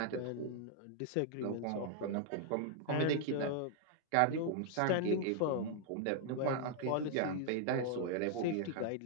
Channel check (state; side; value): different; both; correlation 0.00